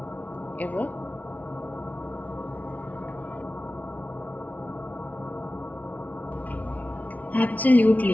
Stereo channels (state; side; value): late; right; 0.073 ms